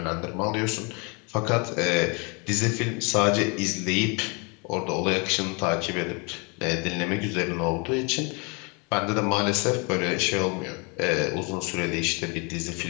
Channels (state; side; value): quieter; right; 32.1 dB